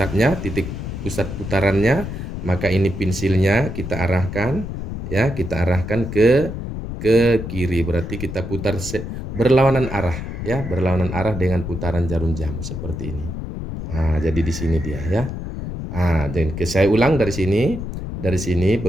titik pusat putarannya, maka ini pensilnya kita arahkan ya, kita arahkan ke kiri, berarti kita putar berlawanan arah ya, berlawanan arah dengan putaran jarum jam seperti ini. Nah, jadi di sini dia ya. Dan saya ulang dari sini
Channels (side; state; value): left; noise; rumble, 6 dB below the sound